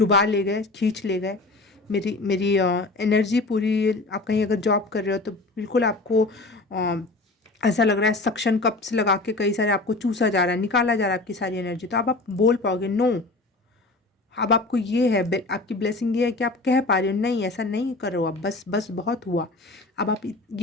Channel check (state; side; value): quieter; right; 3.2 dB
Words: ले गए, खींच ले गए मेरी एनर्जी पूरी। आप कहीं अगर जॉब कर रहे हो तो बिल्कुल आपको ऐसा लग रहा है सक्शन कप्स लगा के कई सारे आपको चूसा जा रहा है, निकाला जा रहा है आपकी सारी एनर्जी। तो अब आप बोल पाओगे नो, अब आपको ये है, आपकी ब्लेसिंग ये है कि आप कह पा रहे हो नहीं ऐसा नहीं करो, अब बस बस बहुत हुआ। अब आप